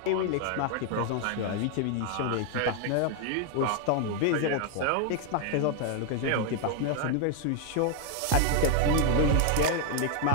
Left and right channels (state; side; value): different; both; correlation 0.00